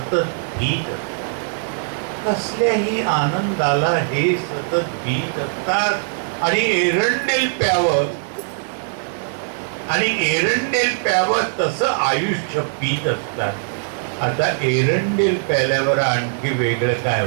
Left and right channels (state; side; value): silent; left; 65 dB below the other